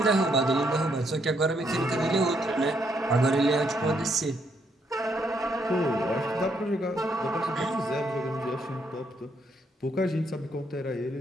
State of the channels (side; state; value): both; normal; correlation 0.74